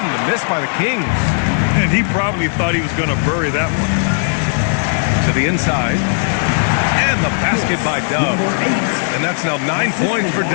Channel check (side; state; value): right; silent; digital silence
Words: the miss by the Kings. And he probably thought he was going to bury that one. To the inside, and the basket by Dub. And that's now 9 points for